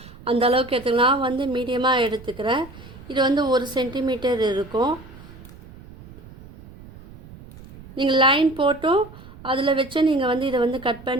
அந்த அளவுக்கு எடுத்துக்கலாம். நான் வந்து மீடியமாக எடுத்துக்கிறேன். இது வந்து 1 சென்டிமீட்டர் இருக்கும். நீங்கள் லைன் போட்டும் அதில் வச்சு நீங்கள் வந்து இதை வந்து கட்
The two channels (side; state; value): right; noise; rumble, 19 dB below the sound